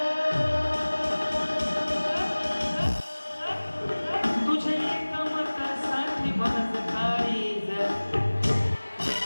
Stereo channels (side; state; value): both; inverted; correlation -1.00